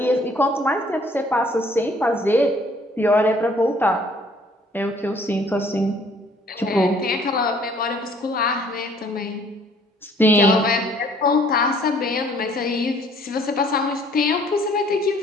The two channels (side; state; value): both; normal; correlation 0.59